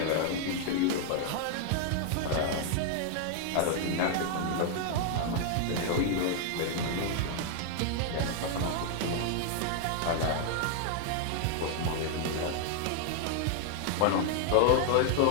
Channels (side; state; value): both; different; correlation 0.00